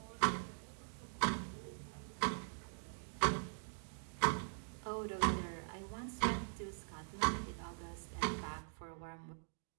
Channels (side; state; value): left; silent; digital silence